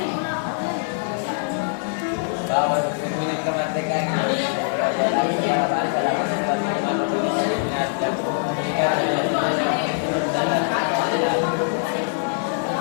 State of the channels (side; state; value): right; silent; 63 dB below the other